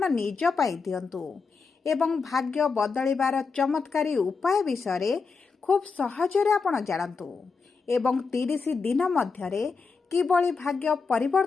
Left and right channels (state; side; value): quieter; right; 4.8 dB